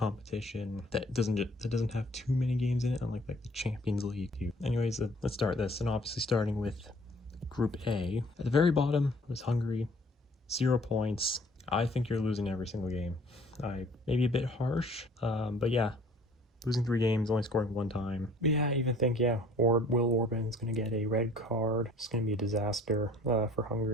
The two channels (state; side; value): normal; both; correlation 0.54